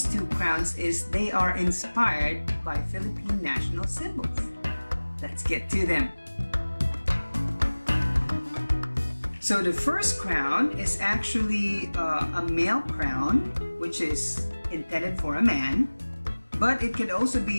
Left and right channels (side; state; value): both; inverted; correlation -1.00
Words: two crowns is they are inspired by Philippine National Symbols. Let's get to them. So the first crown is actually a male crown, which is intended for a man. But it could also